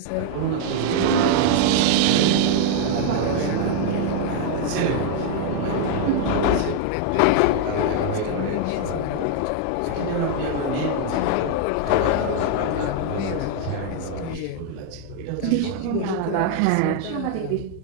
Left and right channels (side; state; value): both; different; correlation 0.00